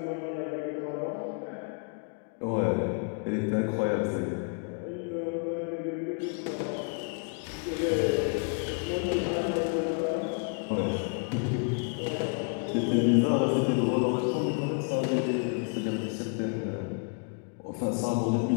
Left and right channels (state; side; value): quieter; right; 38.7 dB